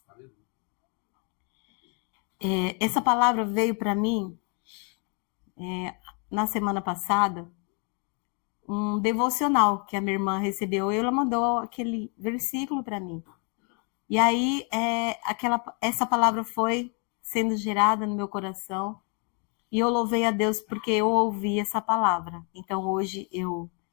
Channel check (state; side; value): quieter; right; 36.2 dB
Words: Essa palavra veio para mim na semana passada, um devocional que a minha irmã recebeu, e ela mandou aquele versículo para mim. E aí, essa palavra foi sendo gerada no meu coração, e eu louvei a Deus porque eu ouvi essa palavra. Então, hoje eu